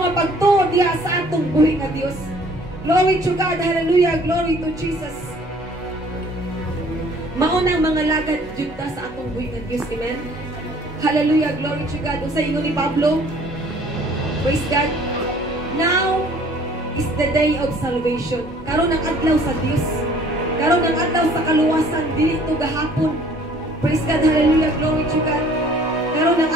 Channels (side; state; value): both; normal; correlation 0.55